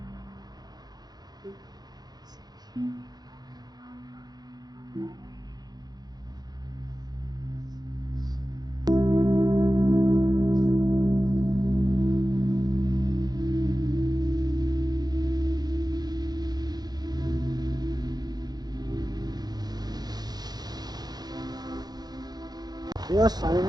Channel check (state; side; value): late; left; 0.19 ms